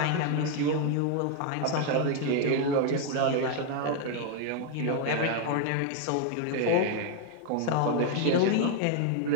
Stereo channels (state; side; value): different; both; correlation 0.00